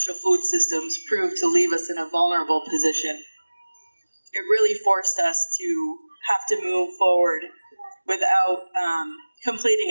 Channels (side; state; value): both; inverted; correlation -1.00